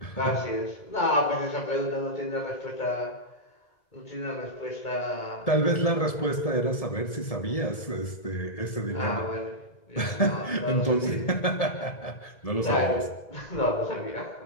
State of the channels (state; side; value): late; right; 1.7 ms